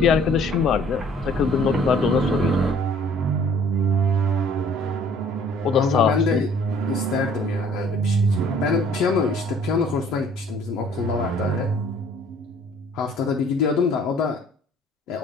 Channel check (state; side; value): normal; both; correlation 0.55